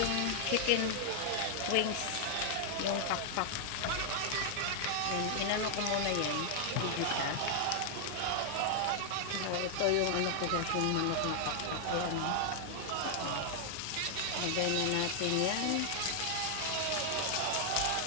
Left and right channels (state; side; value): different; both; correlation -0.01